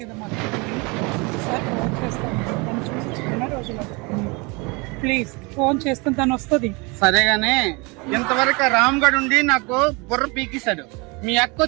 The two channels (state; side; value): quieter; left; 28.1 dB